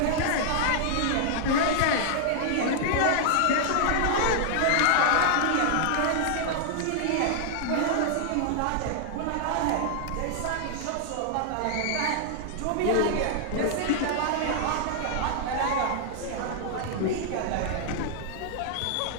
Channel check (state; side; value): different; both; correlation -0.01